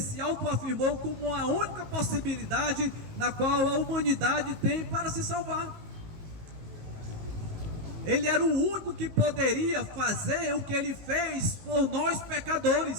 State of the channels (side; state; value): left; late; 19 ms